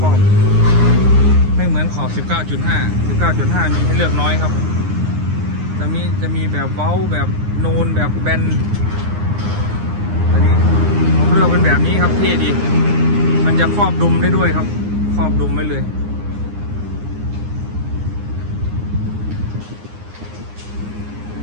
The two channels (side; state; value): left; late; 9.7 ms